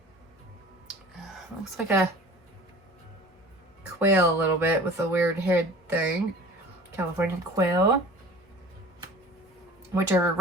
Looks like a quail a little bit with a weird head thing. California quail. Which are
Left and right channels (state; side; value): normal; both; correlation 0.44